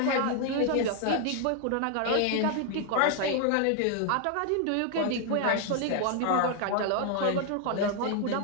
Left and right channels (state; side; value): different; both; correlation 0.00